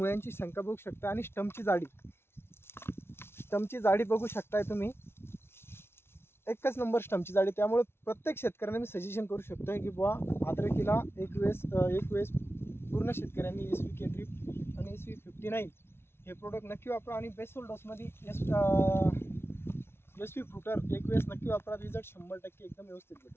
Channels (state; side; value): late; right; 0.12 ms